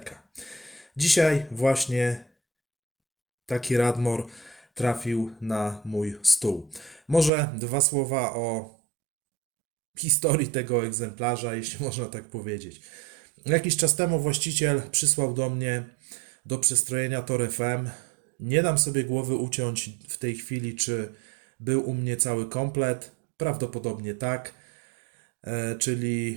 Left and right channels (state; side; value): drops out; left; at 7.3 s